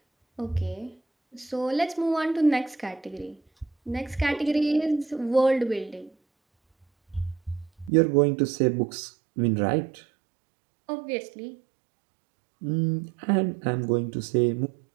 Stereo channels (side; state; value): left; drops out; at 7.9 s